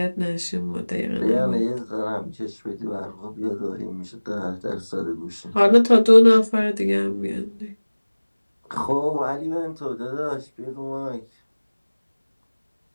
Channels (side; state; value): both; inverted; correlation -1.00